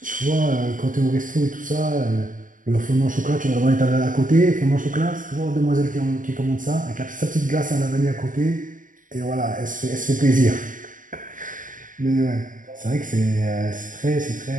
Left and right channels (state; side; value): late; left; 0.38 ms